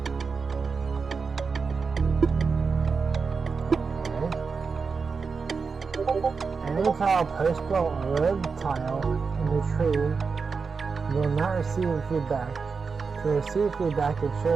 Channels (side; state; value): left; quieter; 5.1 dB